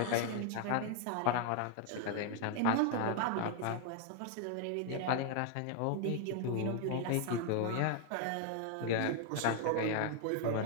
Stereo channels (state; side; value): different; both; correlation 0.00